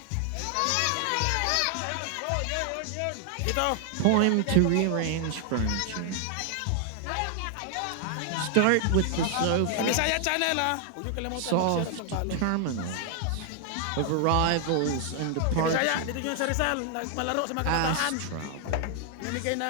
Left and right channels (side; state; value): both; different; correlation 0.00